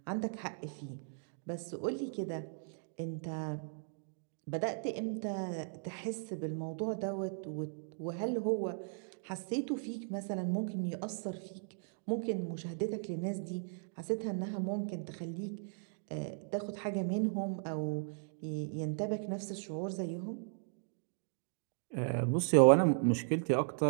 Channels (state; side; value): silent; left; digital silence